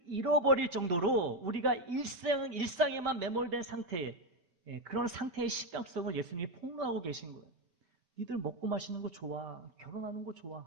잃어버릴 정도로 우리가 일상에만 매몰된 상태에, 그런 상태의 심각성을 예수님이 폭로하고 계신 거예요. 니들 먹고 마시는 거 좋아, 결혼하는 거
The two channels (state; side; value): late; left; 5.2 ms